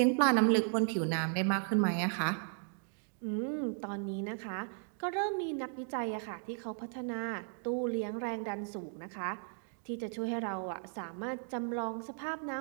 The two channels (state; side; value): silent; left; 54 dB below the other